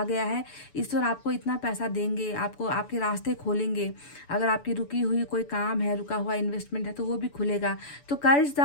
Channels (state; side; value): late; right; 6.9 ms